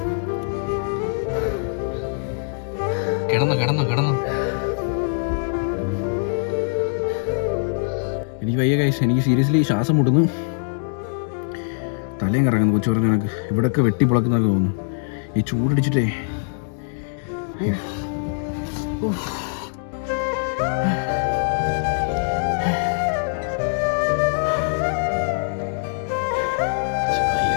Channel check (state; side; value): silent; right; digital silence